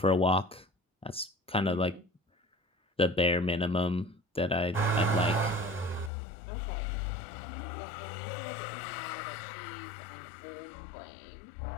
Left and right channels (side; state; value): right; drops out; at 6.1 s